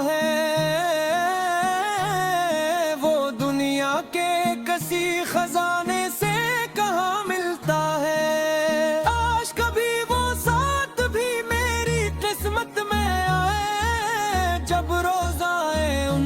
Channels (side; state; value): both; identical; correlation 1.00